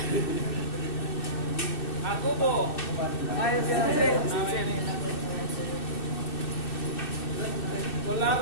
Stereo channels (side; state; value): right; late; 2.6 ms